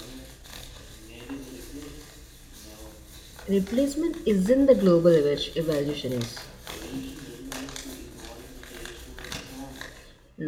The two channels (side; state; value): both; identical; correlation 1.00